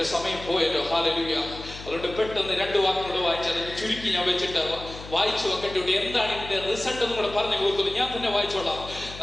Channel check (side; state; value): left; noise; hum, 14 dB below the sound